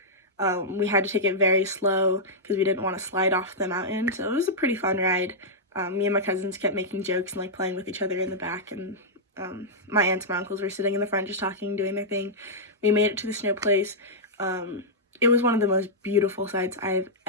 we had to take it very slow because we didn't want to slide off the mountain. So it was a pretty fun ride. Me and my cousins kept making jokes and like playing with each other in the back, and my aunts and my uncles were sitting in the front just talking, doing their thing. We made it to the snow place. It was one of the most beautiful sights I've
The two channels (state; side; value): normal; both; correlation -0.09